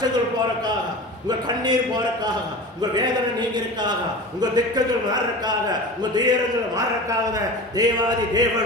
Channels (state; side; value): normal; both; correlation 0.33